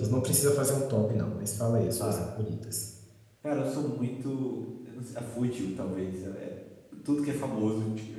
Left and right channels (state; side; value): identical; both; correlation 1.00